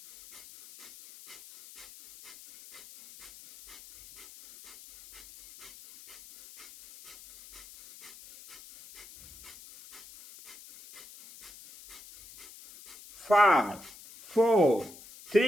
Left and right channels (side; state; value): left; noise; hiss, 19 dB below the sound